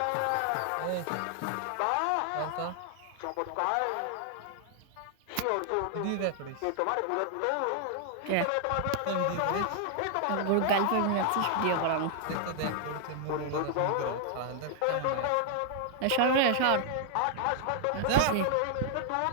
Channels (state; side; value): different; both; correlation 0.00